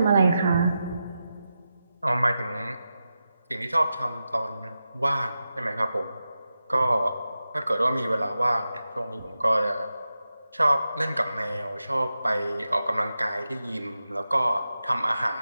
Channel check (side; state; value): both; inverted; correlation -0.90